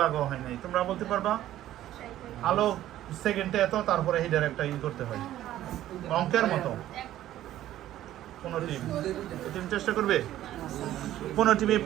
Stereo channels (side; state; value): left; quieter; 13.2 dB